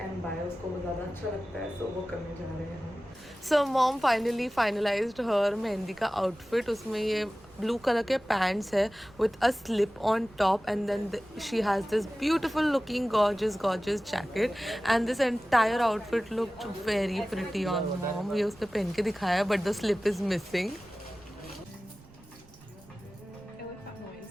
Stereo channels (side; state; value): right; noise; rumble, 25 dB below the sound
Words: buy, उसको वो ज़्यादा अच्छा लगता है. सो वो करने जा रहे हैं हम. So mom finally finalised her mehndi का आउटफिट. उसमें ये ब्लू कलर के पैंट्स है with a slip on top and then she has this beautiful looking gorgeous jacket and this entire outfit looked very pretty on mom. ये उसने पहन के दिखाया but the slip is missing.